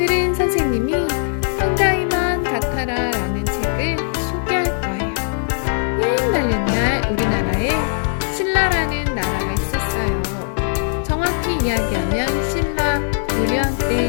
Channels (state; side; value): silent; right; 58 dB below the other